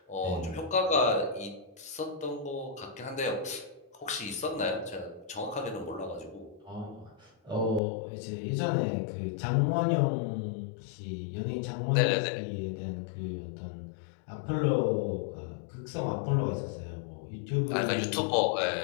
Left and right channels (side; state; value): right; drops out; at 7.8 s